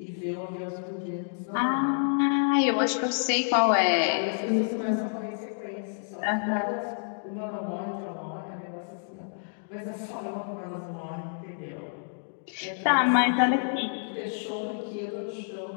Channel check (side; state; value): right; silent; digital silence